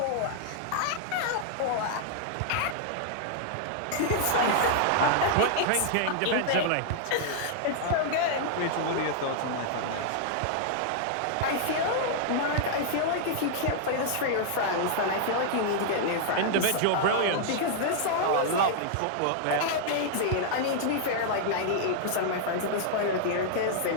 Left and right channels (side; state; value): both; different; correlation -0.01